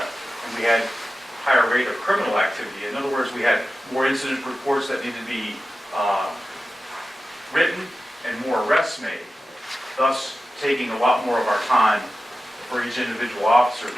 we had higher rate of criminal activity. In other words, we had more incident reports that needed to be written and more arrests made, thus taking a lot more of our time for each individual officer,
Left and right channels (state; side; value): normal; both; correlation 0.94